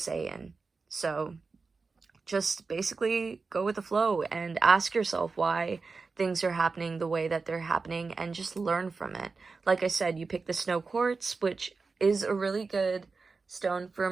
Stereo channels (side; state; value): left; quieter; 4.4 dB